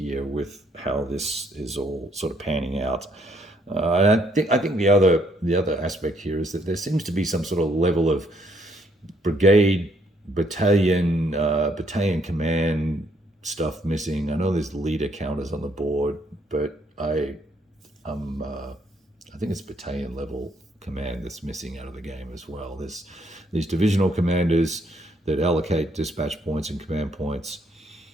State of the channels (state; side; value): normal; both; correlation 0.69